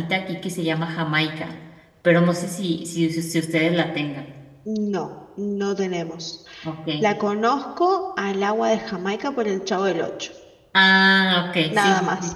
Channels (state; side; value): identical; both; correlation 1.00